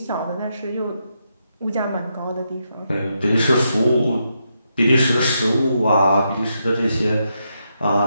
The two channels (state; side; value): inverted; both; correlation -0.82